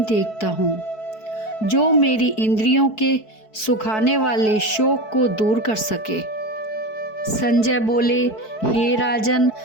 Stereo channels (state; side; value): late; right; 4.6 ms